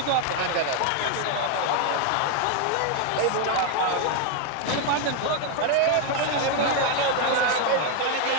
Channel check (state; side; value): different; both; correlation 0.01